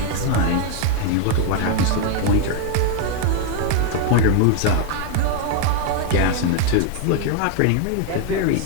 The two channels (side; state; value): both; different; correlation 0.01